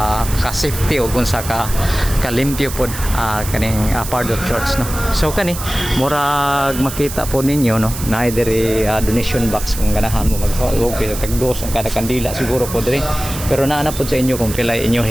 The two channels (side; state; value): right; noise; hiss, 9 dB below the sound